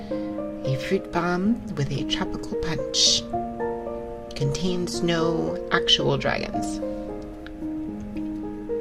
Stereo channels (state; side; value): identical; both; correlation 1.00